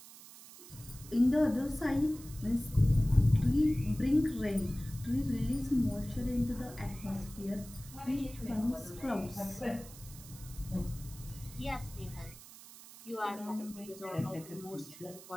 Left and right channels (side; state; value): right; noise; hiss, 17 dB below the sound